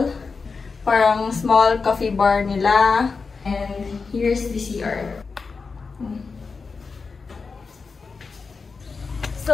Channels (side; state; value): right; quieter; 4.7 dB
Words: Parang small coffee bar nila. And here's the CR.